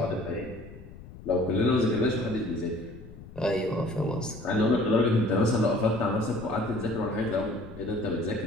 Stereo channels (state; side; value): noise; left; rumble, 16 dB below the sound